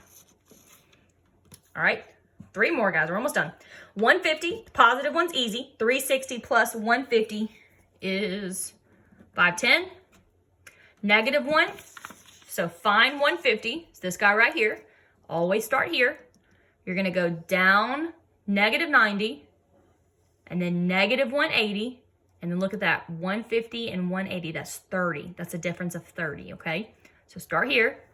All right. 3 more, guys. We're almost done. 150, positive one's easy. 360 plus 150 is 510. Negative 1, so find 150. It's this guy right here. Always start here. You're going to go down negative 90 and then negative 180. And then look at that, 150 and 180, that's 30. That's a difference of 30, okay? So start here,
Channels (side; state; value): both; identical; correlation 1.00